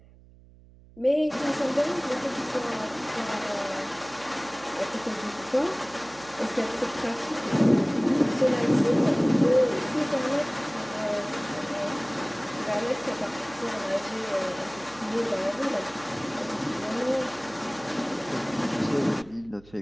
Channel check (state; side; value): noise; right; hum, 24 dB below the sound